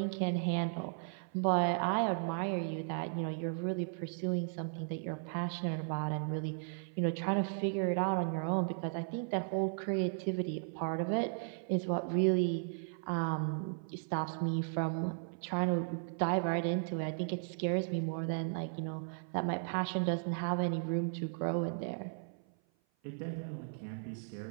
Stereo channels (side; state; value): left; silent; 54 dB below the other